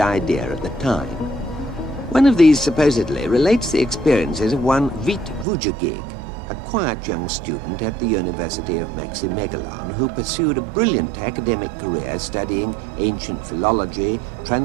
idea at the time. One of these supposedly relates the experiences of one Vít Vujagig, a quiet young student at the University of Maximegalon who pursued a brilliant academic career studying ancient philology,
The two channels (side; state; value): left; drops out; at 5.5 s